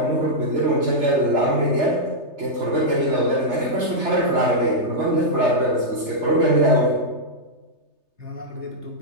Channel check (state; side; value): late; left; 3.3 ms